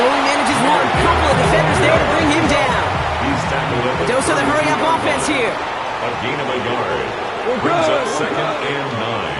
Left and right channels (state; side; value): identical; both; correlation 1.00